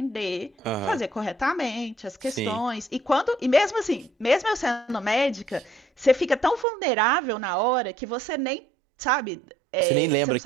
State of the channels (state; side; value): drops out; left; at 6.7 s